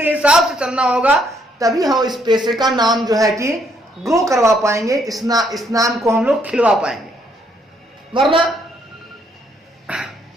हिसाब से चलना होगा, तभी हम इस पेशे का नाम जो है कि ग्रो करवा पाएंगे, इस नाम को हम लोग खिलवा पाएंगे। वरना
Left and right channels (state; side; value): normal; both; correlation 0.71